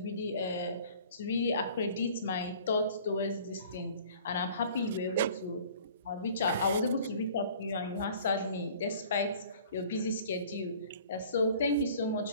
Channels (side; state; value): both; inverted; correlation -0.50